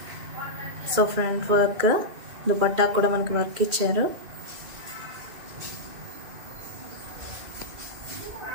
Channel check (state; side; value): late; left; 2.3 ms